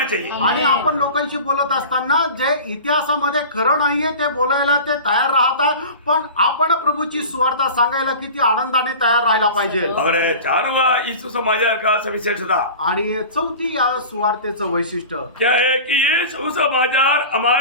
चाहिए। आणि आपण लोकांशी बोलत असताना जे इतिहासामध्ये खरं नाहीये ते बोलायला ते तयार राहतात, पण आपण प्रभूची सुवार्ता सांगायला किती आनंदाने तयार राहायला पाहिजे. और चारवा यीशु समाचार का सविशेषता आणि चौथी या सुवार्तेचं वैशिष्ट्य क्या है कि ये सुसमाचार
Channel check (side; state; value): both; inverted; correlation -0.36